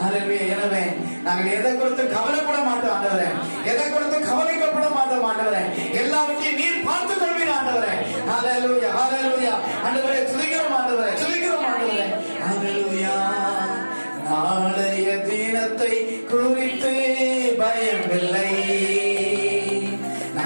எனவே நாங்கள் எதை கொடுத்து கவலைப்பட மாட்டோம் ஆண்டவரே. எதை கொடுத்து கவலைக்கப்பட மாட்டோம் ஆண்டவரே. எல்லாவற்றையும் நீர் பார்த்துக் கொள்வீர் ஆண்டவரே. ஹல்லேலூயா, ஹல்லேலூயா. ஆண்டவரே துதிக்கிறோம் ஆண்டவரே, துதிக்கிறோம் ஆண்டவரே. ஹல்லேலூயா. நாளைய தினத்தை குறித்து பயமில்லை.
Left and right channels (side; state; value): both; inverted; correlation -1.00